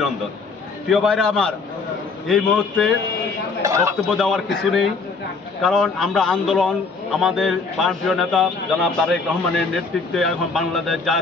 প্রিয় ভাইরা আমার, এই মুহূর্তে বক্তব্য দেওয়ার কিছু নেই, কারণ আমরা আন্দোলন আমাদের প্রাণপ্রিয় নেতা জনাব তারেক রহমানের নেতৃত্বে এখন বাংলাদেশ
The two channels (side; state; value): right; quieter; 4.4 dB